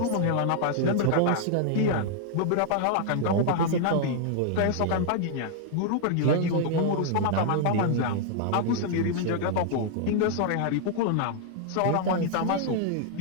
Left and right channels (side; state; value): both; different; correlation 0.00